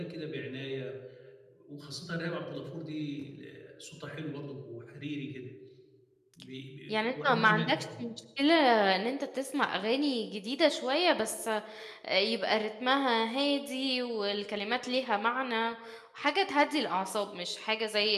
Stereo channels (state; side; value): identical; both; correlation 1.00